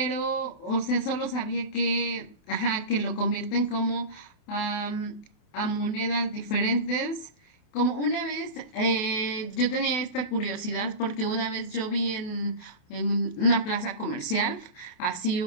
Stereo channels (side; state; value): right; late; 28 ms